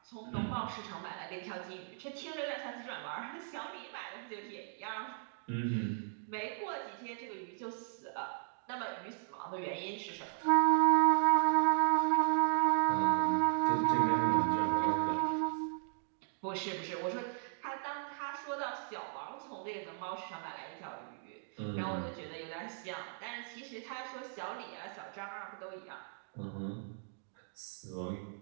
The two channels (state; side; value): silent; left; digital silence